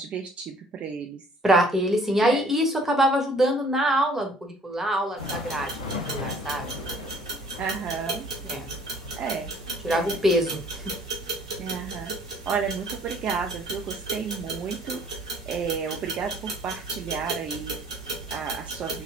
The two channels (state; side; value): normal; both; correlation 0.56